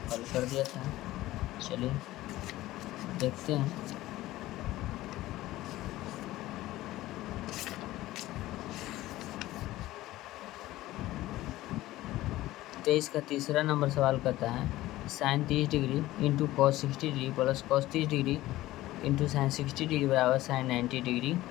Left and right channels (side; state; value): right; quieter; 16.5 dB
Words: हल कर दिया था। चलिए देखते हैं। तेईस का तीसरा नंबर सवाल करता है sine 30 degree into cos 60 degree plus cos 30 degree into sine 60 degree बराबर साइन 90 डिग्री